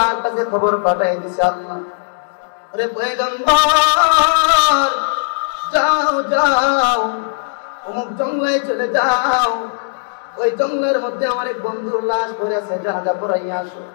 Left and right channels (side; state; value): right; silent; digital silence